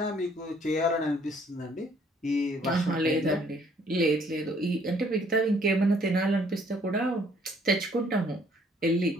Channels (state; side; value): normal; both; correlation 0.62